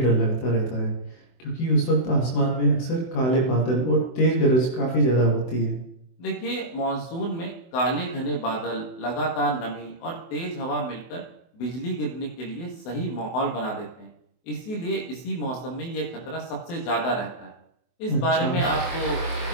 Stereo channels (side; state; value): right; late; 24 ms